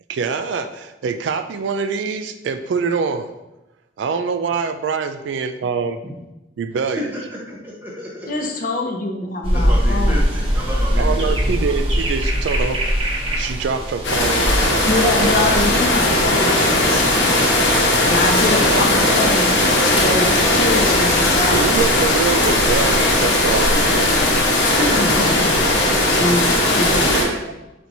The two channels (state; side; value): normal; both; correlation 0.23